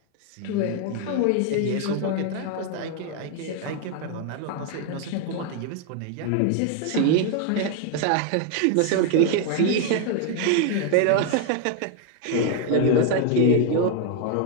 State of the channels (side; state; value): both; different; correlation 0.00